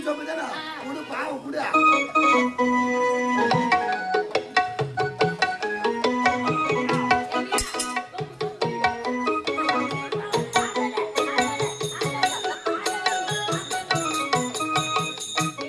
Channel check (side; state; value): both; identical; correlation 1.00